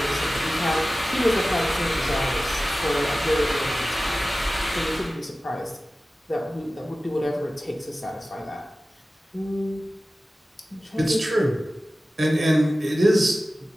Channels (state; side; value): normal; both; correlation 0.96